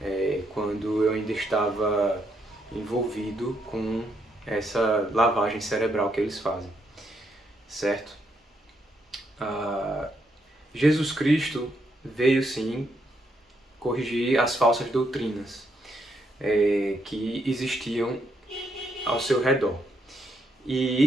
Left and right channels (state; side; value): normal; both; correlation 0.76